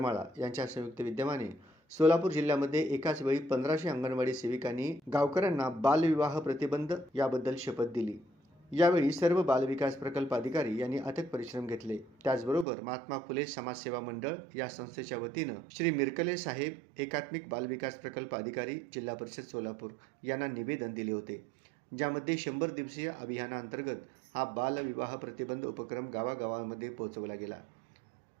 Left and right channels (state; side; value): drops out; left; at 12.7 s